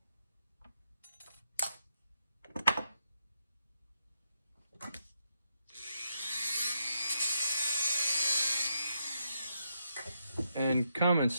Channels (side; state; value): both; inverted; correlation -0.80